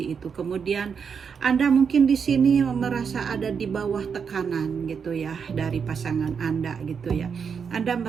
itu. Kemudian Anda mungkin di sini merasa ada di bawah tekanan gitu ya dari pasangan Anda gitu ya. Anda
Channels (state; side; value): quieter; left; 6.4 dB